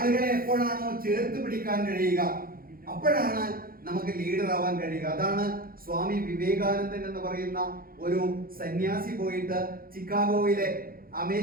എപ്പോഴാണോ ചേർത്ത് പിടിക്കാൻ കഴിയുക, അപ്പോഴാണ് നമുക്ക് ലീഡർ ആവാൻ കഴിയുക. അതാണ് സ്വാമി വിവേകാനന്ദൻ എന്ന് പറയുന്ന ഒരു സന്യാസി പോയിട്ട് ചിക്കാഗോയിലെ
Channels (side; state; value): left; late; 0.42 ms